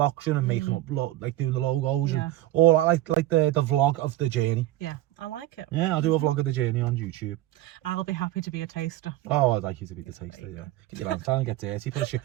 and making up like doing the logos Yeah. and all that, like the vlog of the journey. Yeah, I like it. Yeah, I'll do a vlog of the journey on YouTube. I'll be happy to be a taster. Oh, I'd like you to be the taster, yeah. Get your hands down and get dirty. Put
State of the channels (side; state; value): left; quieter; 15.6 dB